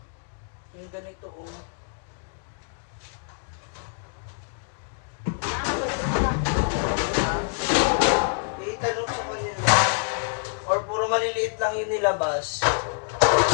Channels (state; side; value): silent; right; digital silence